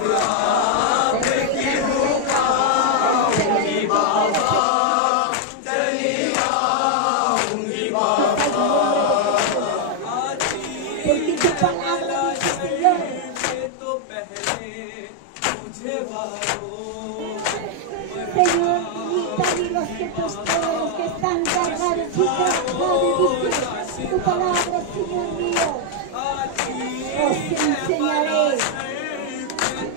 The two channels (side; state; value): both; different; correlation 0.00